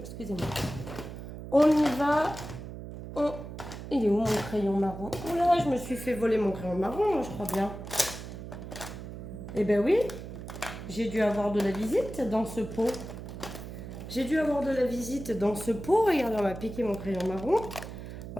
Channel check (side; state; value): right; noise; hum, 10 dB below the sound